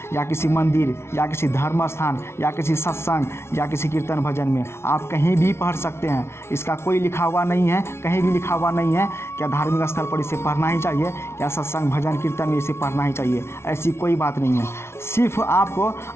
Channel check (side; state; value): right; late; 0.12 ms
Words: या किसी मंदिर या किसी धर्म स्थान या किसी सत्संग या किसी कीर्तन भजन में आप कहीं भी पढ़ सकते हैं। इसका कोई लिखा हुआ नहीं है, कहीं भी लिखा हुआ नहीं है क्या धार्मिक स्थल पर इसे पढ़ना ही चाहिए या सत्संग भजन कीर्तन में इसे पढ़ना ही चाहिए। ऐसी कोई बात नहीं है। सिर्फ आपको